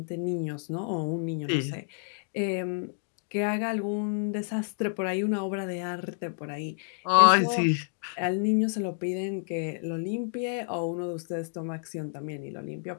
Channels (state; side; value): silent; right; digital silence